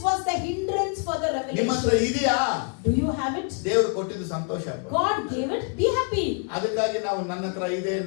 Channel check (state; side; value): quieter; right; 38.7 dB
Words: was the hindrance for the ನಿಮ್ಮ ಹತ್ರ revelation. ಇದೆಯಾ? Do you have it? ದೇವರು ಕೊಟ್ಟಿದ್ದು ಸಂತೋಷ. God gave it. Be happy. ಅದಕ್ಕಾಗಿ ನಾವು ನನ್ನ ಹತ್ರ ಇದೆ